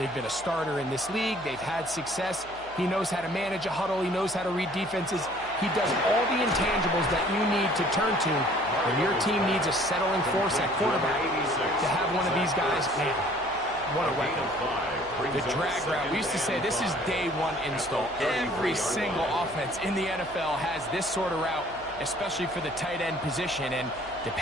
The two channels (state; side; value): noise; right; hum, 21 dB below the sound